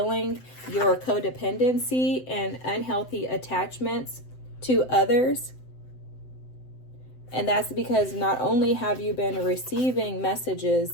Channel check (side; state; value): right; late; 7.9 ms